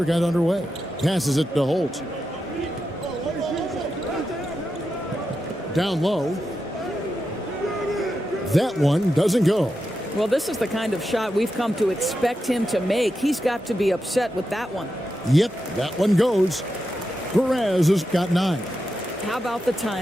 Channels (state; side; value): normal; both; correlation 0.88